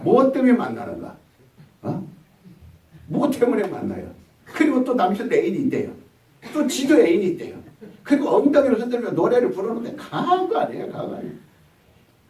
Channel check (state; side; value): identical; both; correlation 1.00